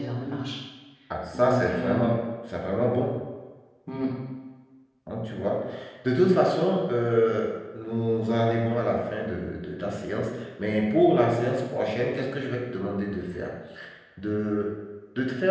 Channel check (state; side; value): identical; both; correlation 1.00